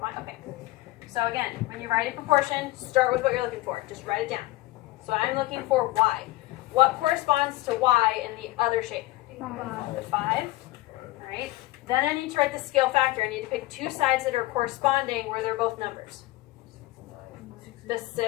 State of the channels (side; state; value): right; quieter; 19.0 dB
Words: Okay. So again, when you write a proportion, start with what you're looking for. Just write it down. So I'm looking for y. What corresponds to y in the other shape? 5. The 5. All right. Then I need to write the scale factor. I need to pick two sides that are corresponding where they're both numbers. 6 and 9. The